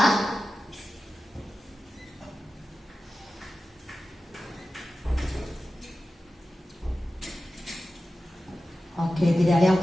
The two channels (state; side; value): normal; both; correlation 0.94